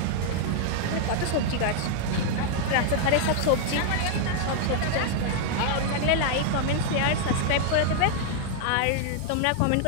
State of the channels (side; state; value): both; different; correlation 0.00